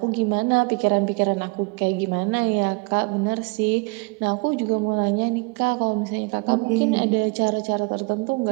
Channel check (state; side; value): quieter; left; 28.9 dB